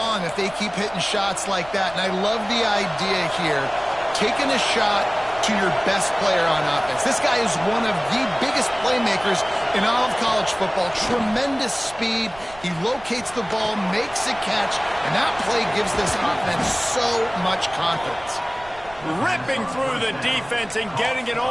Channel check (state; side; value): noise; right; rumble, 22 dB below the sound